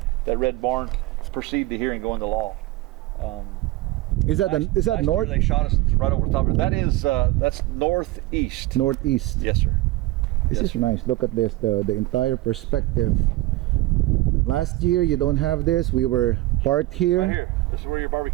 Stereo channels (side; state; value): left; quieter; 18.1 dB